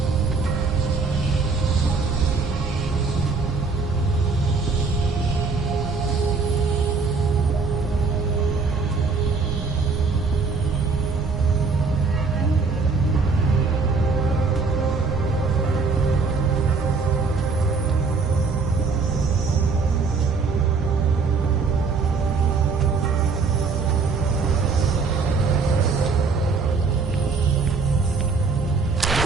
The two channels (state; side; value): quieter; left; 4.5 dB